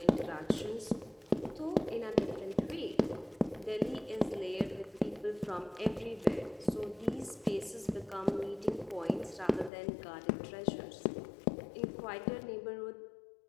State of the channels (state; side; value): drops out; right; at 9.7 s